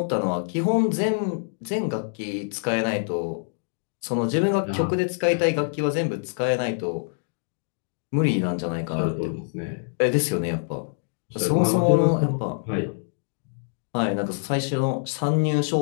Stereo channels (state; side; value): silent; right; digital silence